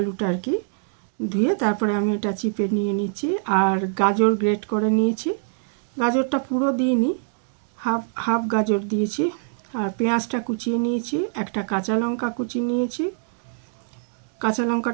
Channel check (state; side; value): silent; left; digital silence